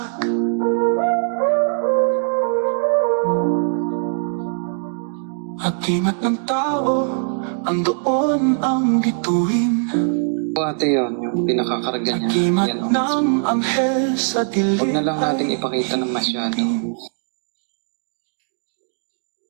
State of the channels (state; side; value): silent; left; digital silence